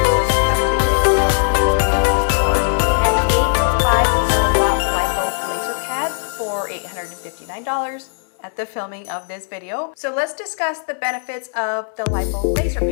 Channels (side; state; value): right; silent; digital silence